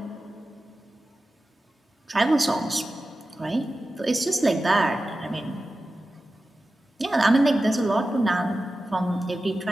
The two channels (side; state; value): both; normal; correlation 0.94